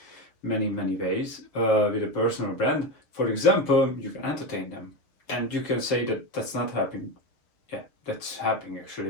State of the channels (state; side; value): late; right; 6.8 ms